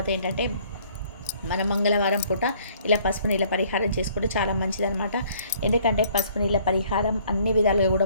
ఏంటంటే మన మంగళవారం పూట ఇలా పసుపు నీళ్ళ పరిహారం చేసుకుంటే చాలా మంచిదన్నమాట. ఎందుకంటే పసుపు నీళ్ళ పరిహారం అన్ని విధాలుగా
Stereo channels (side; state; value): both; inverted; correlation -0.60